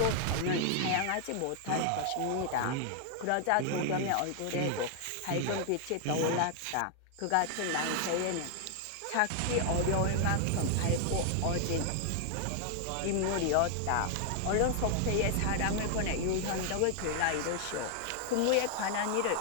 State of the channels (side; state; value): both; different; correlation 0.00